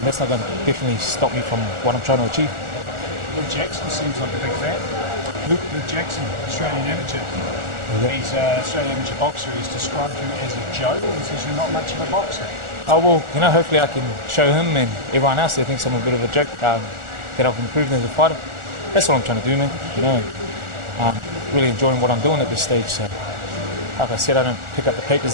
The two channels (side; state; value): left; late; 1.4 ms